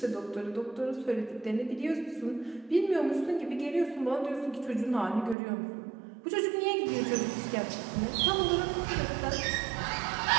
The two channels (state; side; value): drops out; left; at 5.4 s